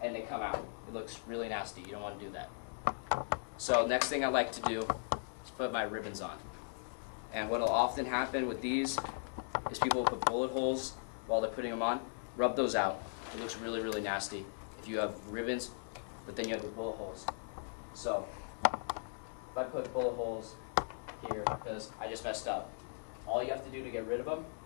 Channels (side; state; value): right; silent; digital silence